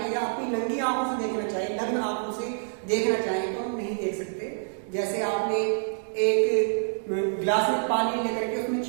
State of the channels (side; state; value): left; silent; digital silence